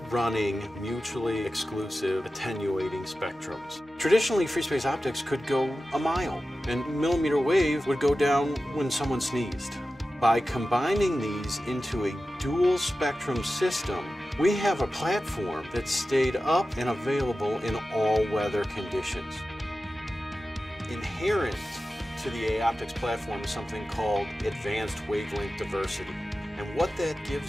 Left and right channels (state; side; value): normal; both; correlation 0.94